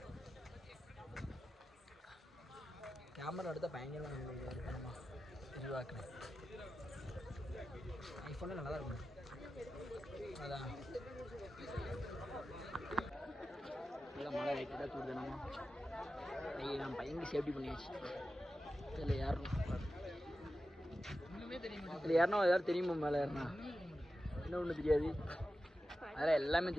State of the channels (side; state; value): both; normal; correlation 0.92